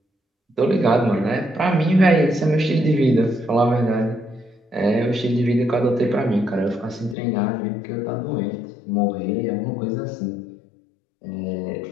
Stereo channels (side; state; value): right; drops out; at 7.2 s